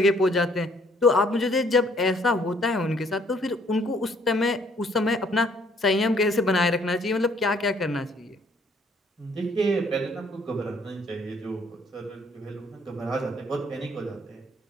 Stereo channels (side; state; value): both; normal; correlation 0.63